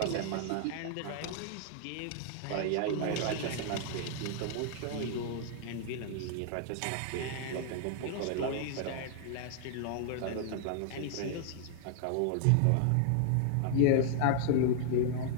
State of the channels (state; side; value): different; both; correlation 0.00